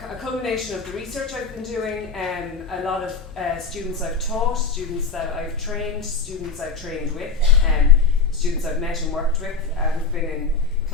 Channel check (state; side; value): quieter; right; 4.8 dB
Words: culmination of the research I've been doing, a lot of students I've taught, students that I've trained, students I've trained with, students I've met and worked with, who've been in